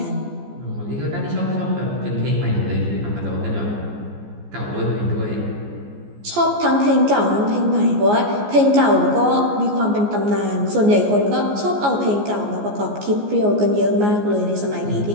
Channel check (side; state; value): left; late; 14 ms